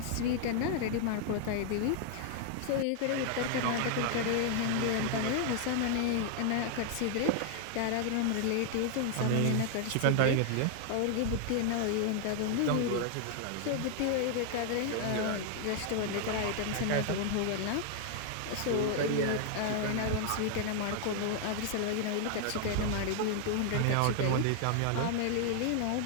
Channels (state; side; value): different; both; correlation 0.00